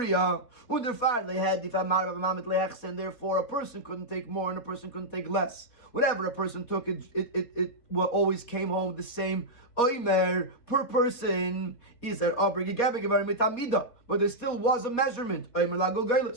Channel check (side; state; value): right; late; 4.2 ms